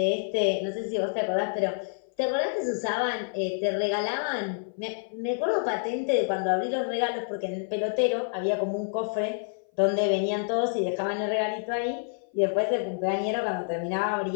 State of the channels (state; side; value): silent; right; 57 dB below the other